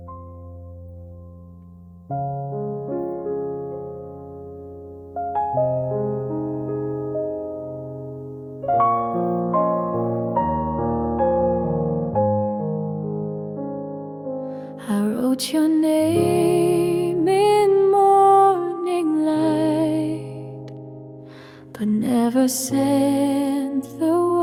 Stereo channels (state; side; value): identical; both; correlation 1.00